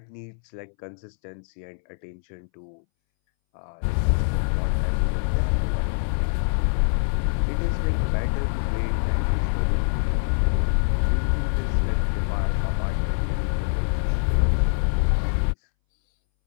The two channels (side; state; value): right; silent; 62 dB below the other